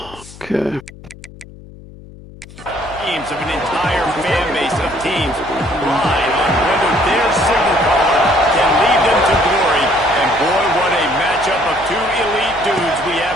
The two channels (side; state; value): left; noise; hum, 19 dB below the sound